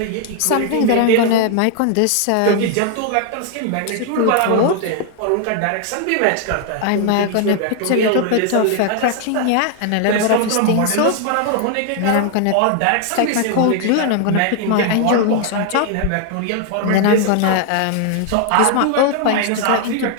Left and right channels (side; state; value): both; different; correlation 0.00